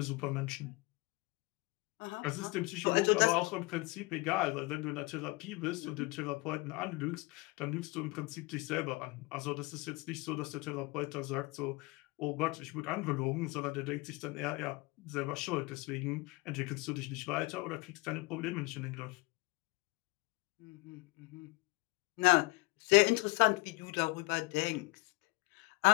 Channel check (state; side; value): quieter; right; 23.7 dB